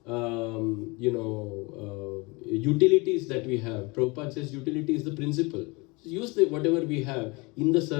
utilities that we have. Prabhupada says utility is the principle. So use whatever we have in the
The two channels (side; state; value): right; quieter; 26.6 dB